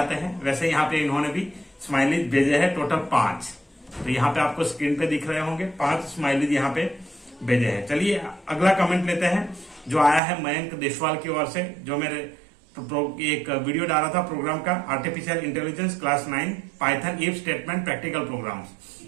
हैं, वैसे यहाँ पे इन्होंने भी स्माइलीज भेजे हैं, टोटल 5। तो यहाँ पे आपको स्क्रीन पे दिख रहे होंगे 5 स्माइलीज यहाँ पे भेजे हैं। चलिए अगला कमेंट लेते हैं, जो आया है मयंक देशवाल की ओर से, जो मेरे एक वीडियो डाला था प्रोग्राम का, artificial intelligence class 9 Python if statement practical programs.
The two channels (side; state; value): left; drops out; at 10.2 s